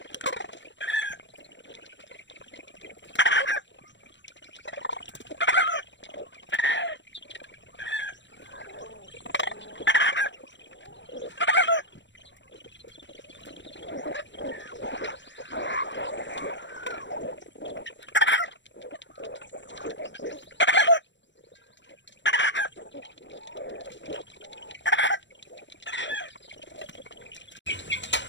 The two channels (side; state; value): right; late; 0.53 ms